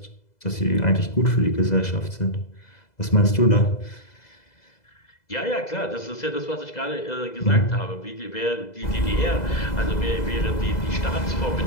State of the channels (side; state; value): right; late; 2.0 ms